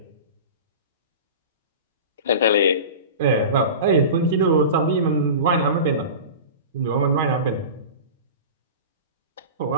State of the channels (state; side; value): inverted; both; correlation -0.31